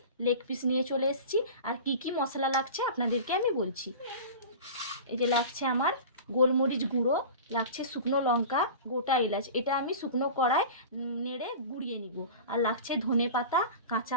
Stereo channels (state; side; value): inverted; both; correlation -0.34